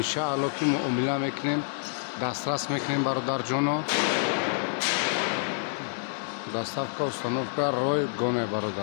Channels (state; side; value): silent; right; digital silence